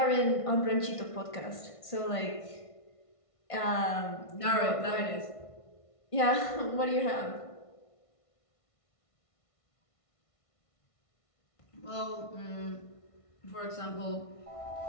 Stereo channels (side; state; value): right; late; 1.5 ms